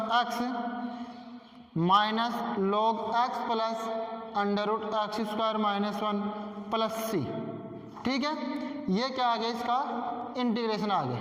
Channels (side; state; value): both; identical; correlation 1.00